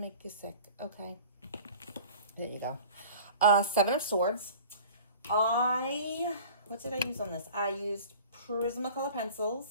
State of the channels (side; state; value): both; inverted; correlation -0.43